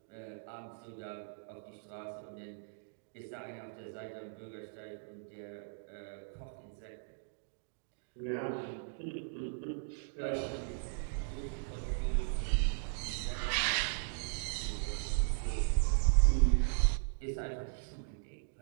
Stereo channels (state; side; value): silent; left; digital silence